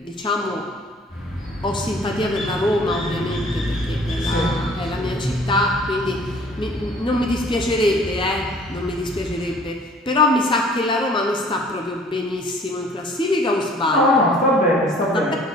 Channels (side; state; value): both; normal; correlation 0.53